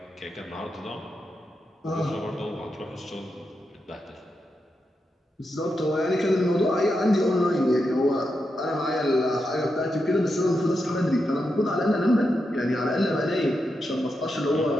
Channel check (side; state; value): both; normal; correlation 0.86